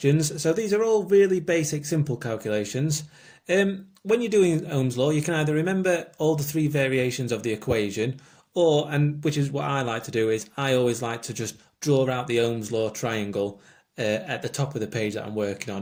So these are all really basic, simple calculations. When you're doing Ohm's law, you can either remember all the three variations of the equation, or, and which is what I like to do, is I always like to just draw out the Ohm's law triangle at the top of the page that I'm working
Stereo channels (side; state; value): both; identical; correlation 1.00